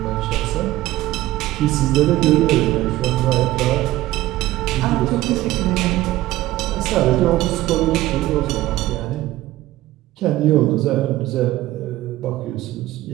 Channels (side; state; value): left; quieter; 16.2 dB